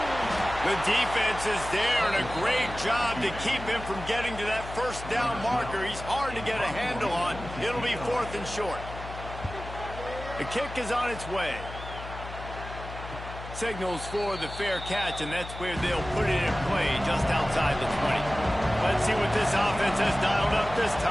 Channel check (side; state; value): left; noise; hum, 11 dB below the sound